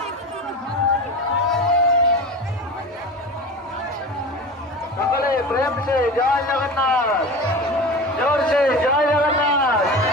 সকলে প্রেম সে জয় জগন্নাথ, জোর সে জয় জগন্নাথ,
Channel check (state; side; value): normal; both; correlation 0.31